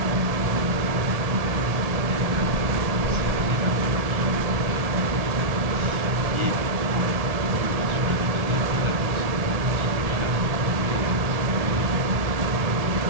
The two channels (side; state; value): left; late; 1.7 ms